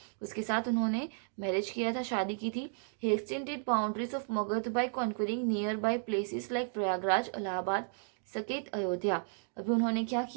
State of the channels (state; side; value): silent; left; digital silence